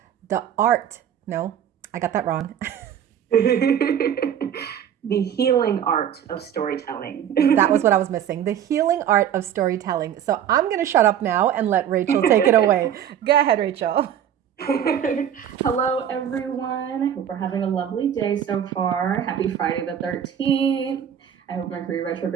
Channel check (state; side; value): quieter; left; 9.5 dB